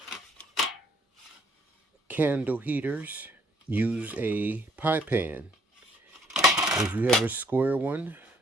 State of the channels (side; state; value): both; normal; correlation 0.65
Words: candle heaters, use a pie pan. If you have a square one,